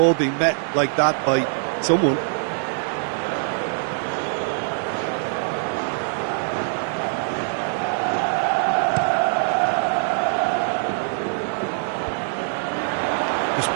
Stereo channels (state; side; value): silent; left; 63 dB below the other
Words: being met like that by someone. Just